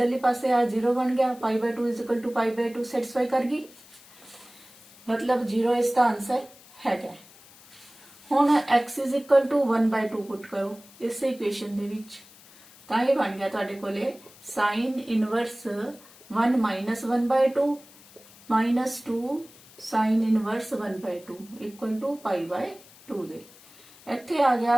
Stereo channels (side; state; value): left; noise; hiss, 23 dB below the sound